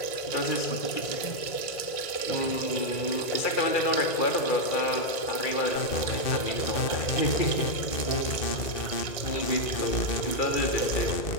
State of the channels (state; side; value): late; right; 1.6 ms